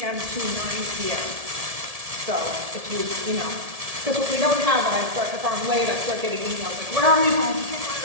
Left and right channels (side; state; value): left; late; 1.7 ms